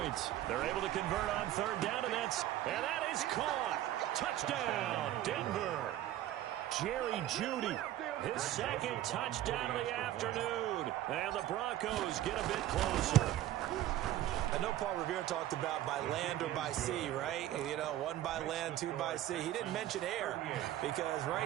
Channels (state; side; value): quieter; left; 13.5 dB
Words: They're able to convert on 3rd down, and that is caught. Touchdown, Denver. Jerry Jeudy, his 2nd touchdown of the afternoon. And the Broncos get a bit closer. I know Paul Revere talked about by land or by sea, right? You know, 1 by land, 2 by sea. He didn't mention air because